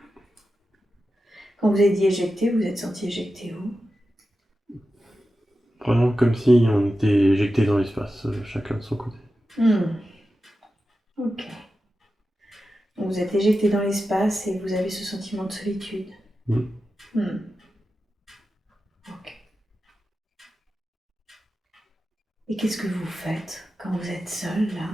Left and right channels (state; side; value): normal; both; correlation 0.92